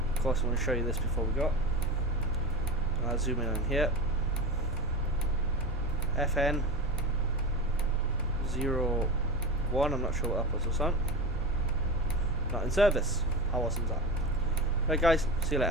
Of course, I'm going to show you this before we go. I'll zoom in on here. FN 01. I'm not sure what that was on. Not in service. How awesome is that? Right, guys. See you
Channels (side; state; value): both; normal; correlation 0.25